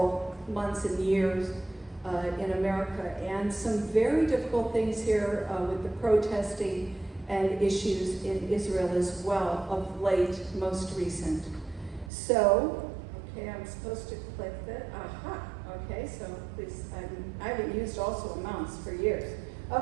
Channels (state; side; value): drops out; left; at 12.1 s